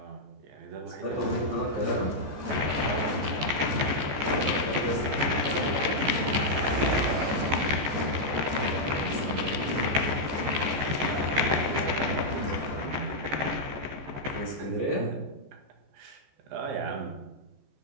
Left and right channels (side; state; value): left; late; 14 ms